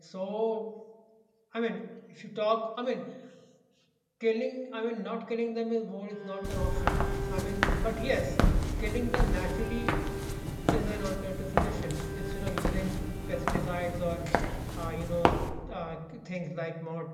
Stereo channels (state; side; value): identical; both; correlation 1.00